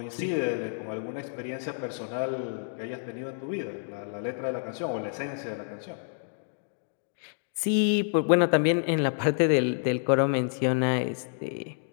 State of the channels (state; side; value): silent; right; digital silence